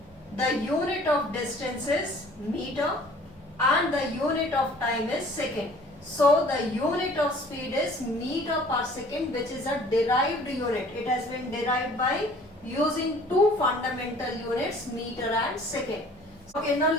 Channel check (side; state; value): right; noise; hum, 28 dB below the sound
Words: The unit of distance is meter and the unit of time is second. So the unit of speed is meter per second, which is a derived unit. It has been derived by using two fundamental units, meter and second. Okay, now